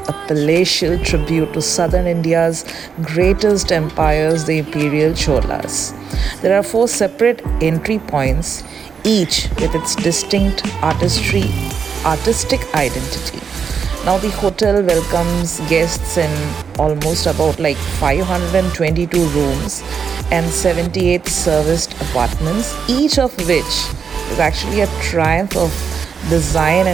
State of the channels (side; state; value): left; quieter; 6.4 dB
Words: a palatial tribute to southern India's greatest empires, the Imperial Cholas. There are 4 separate entry points, each with its distinct artistic identity. Now the hotel welcomes guests in almost about like 522 rooms and 78 serviced apartments, each of which is actually a triumph of design